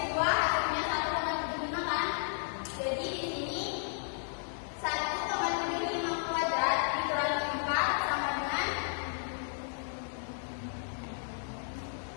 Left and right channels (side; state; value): right; silent; digital silence